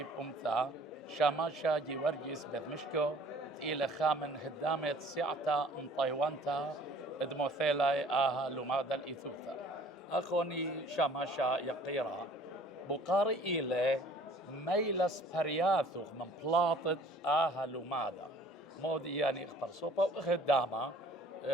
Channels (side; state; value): both; normal; correlation 0.52